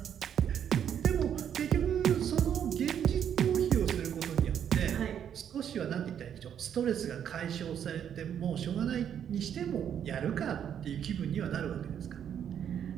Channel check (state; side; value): quieter; left; 9.0 dB